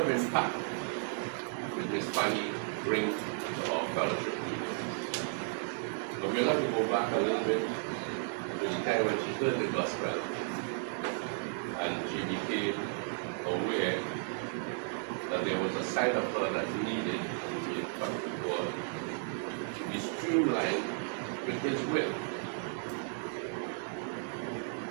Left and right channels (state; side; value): silent; left; 55 dB below the other